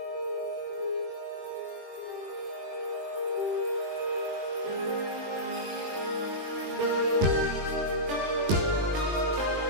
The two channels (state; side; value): late; left; 21 ms